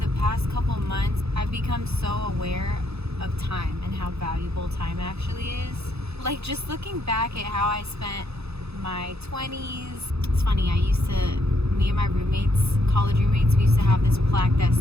past couple months, I've become so aware of time and how valuable time actually is. Like, just looking back at how I spent my 20s. It's funny, me and my roommates, college roommates, we used to have this plaque that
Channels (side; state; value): left; late; 0.79 ms